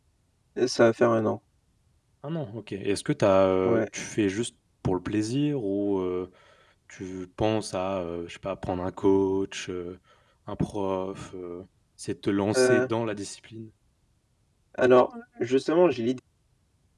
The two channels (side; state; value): both; identical; correlation 1.00